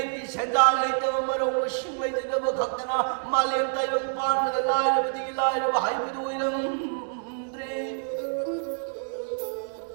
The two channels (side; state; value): left; silent; digital silence